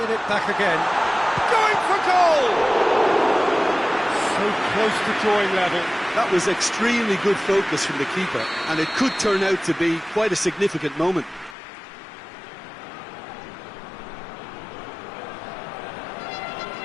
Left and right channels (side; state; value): right; drops out; at 11.6 s